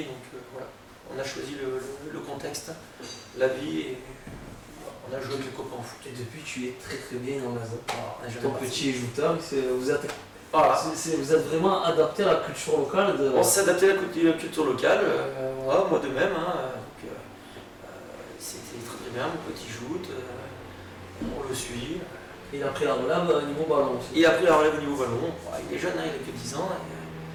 donc voilà, on a choisi le contexte, la vie, et on a joué avec les copains au foot. Et depuis, tu es très bien dans la zone. Ton petit jouteur, vous êtes vraiment adapté à la culture locale. On s'est adapté à la culture locale, moi de même. C'était très bien, mon petit joute, on le suit. Il a pris la relève au niveau ballon aussi. Il a pris la relève au niveau ballon, il est jeune, il a que 10 ans.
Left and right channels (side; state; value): both; identical; correlation 1.00